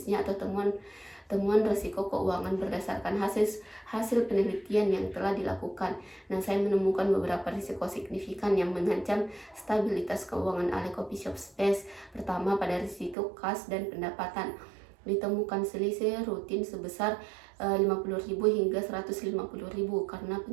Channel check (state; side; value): drops out; left; at 13.2 s